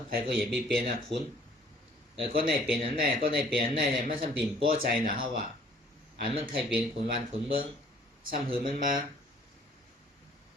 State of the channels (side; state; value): both; normal; correlation 0.57